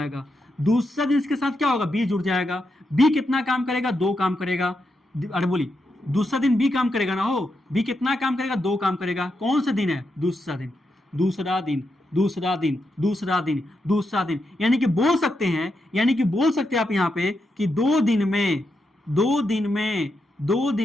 दूसरा दिन इसके साथ क्या होगा, बी जुड़ जाएगा। बी कितना काम करेगा, 2 काम करेगा। अरे बोली दूसरा दिन बी काम करेगा ना, हो बी कितना काम करेगा, 2 काम करेगा। कौन सा दिन है, दूसरा दिन, दूसरा दिन, दूसरा दिन, दूसरा दिन, दूसरा दिन, यानी कि बोल सकते हैं, यानी कि बोल सकते हैं आप यहां पे कि 2 दिन में, 2 दिन में, 2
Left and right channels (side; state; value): both; normal; correlation 0.84